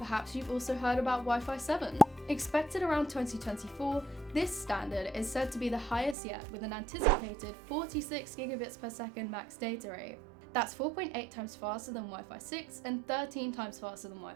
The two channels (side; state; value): left; drops out; at 6.2 s